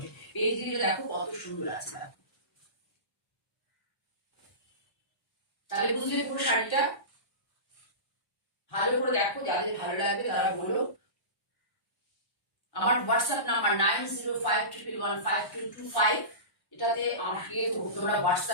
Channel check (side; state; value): right; late; 1.1 ms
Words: এই দিকে দেখো কত সুন্দর আছে, দেখো। তাহলে বুঝলে পুরো শাড়িটা ভালো করে দেখো, যাদের ভালো লাগবে তারা বলো। আমার হোয়াটসঅ্যাপ নাম্বার 9052115225, এটাতে আমাকে তোমরা